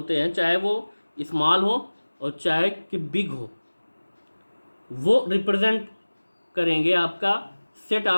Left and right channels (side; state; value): both; inverted; correlation -1.00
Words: हैं चाहे वो स्मॉल हो और चाहे कि बिग हो, वो रिप्रेजेंट करेंगे आपका सेट।